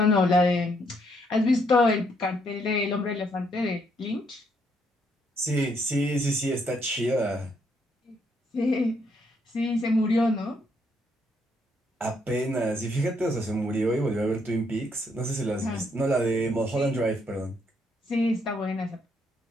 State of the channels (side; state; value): both; normal; correlation 0.73